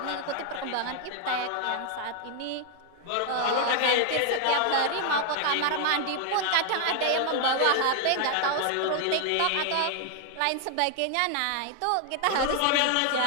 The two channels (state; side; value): different; both; correlation 0.00